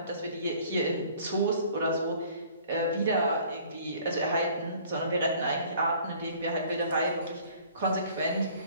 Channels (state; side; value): inverted; both; correlation -0.53